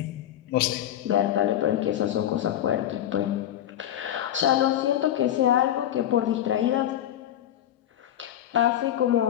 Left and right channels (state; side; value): quieter; right; 11.4 dB